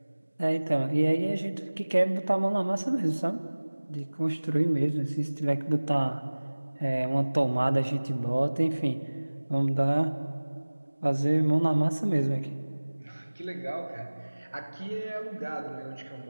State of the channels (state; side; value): inverted; both; correlation -1.00